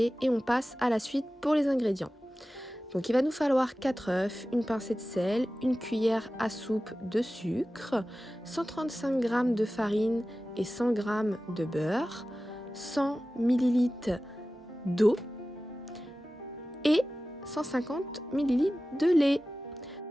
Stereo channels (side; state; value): both; normal; correlation 0.95